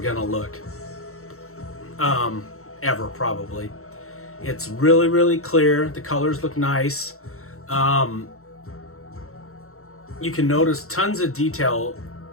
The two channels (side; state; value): right; late; 0.63 ms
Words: look. Ever, probably. It's really, really clear. The colors look nice. You can notice tons of detail.